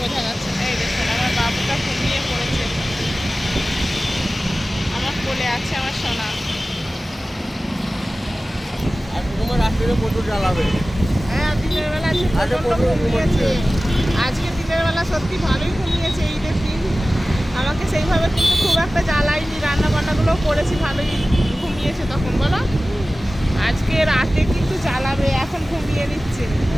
যাচ্ছে না। এই দেখুন আমার বাবুটা ঘুমিয়ে পড়েছে, আমার কোলে আছে আমার সোনা। আর তোমার রাত্রে প্রচুর জ্বালাবে। হ্যাঁ দিনের বেলা ঘুমিয়েছে, আজকে দিনের বেলা সত্যি ভালোই ঘুমিয়েছে। ঈদের দিন আমাকে সেইভাবে কিন্তু খুব একটা জ্বালাইনি, রান্না বান্নাগুলো করেছি, ভালোই ঘুমিয়েছে তখন বলো। আজকে রাতে কিন্তু জ্বালাবে, এখন ঘুমিয়ে নিচ্ছে।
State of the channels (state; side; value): normal; both; correlation 0.96